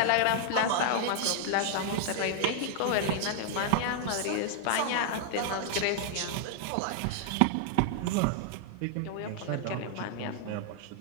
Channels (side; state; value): both; different; correlation 0.00